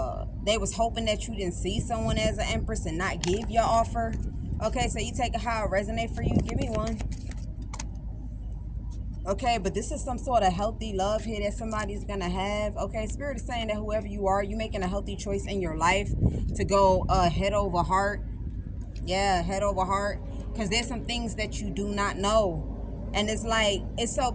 they was hoping that you didn't see someone as an empress and not give your offer. Okay, so you take it how it resonate for you. Give me one. Okay, but this is some sort of healthy love here that somebody's gonna have. Okay, Spirit is saying that whoever you are, you making a healthy choice in your life to go head over heart. Yeah, head over heart, because there's some things that you do not know. And it's like, it's so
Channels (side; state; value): both; identical; correlation 1.00